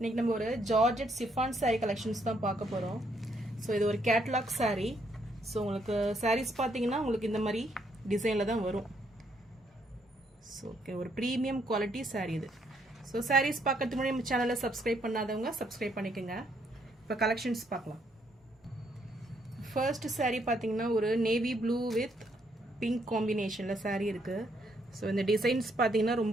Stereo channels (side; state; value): both; normal; correlation 0.72